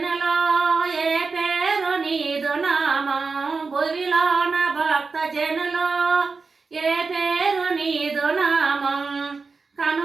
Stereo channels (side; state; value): left; quieter; 4.5 dB